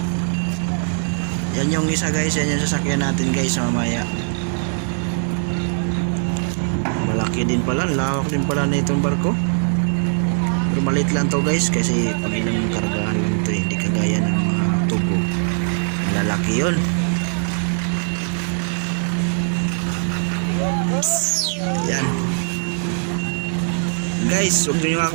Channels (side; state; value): left; silent; 56 dB below the other